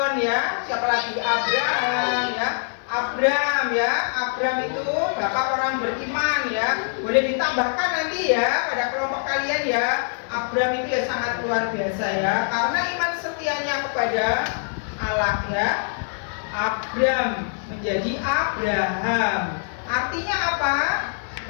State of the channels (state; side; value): silent; right; digital silence